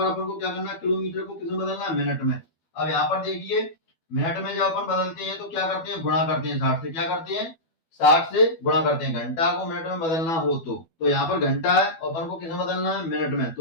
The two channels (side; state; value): right; late; 12 ms